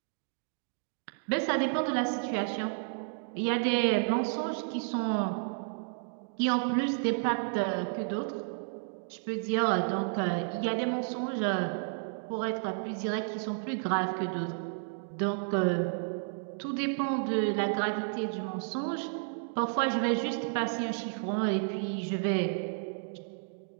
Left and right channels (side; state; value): left; silent; digital silence